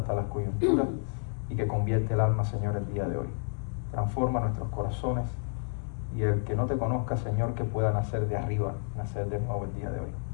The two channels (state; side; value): silent; right; digital silence